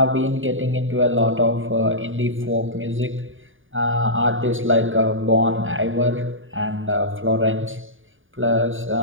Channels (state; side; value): late; left; 0.58 ms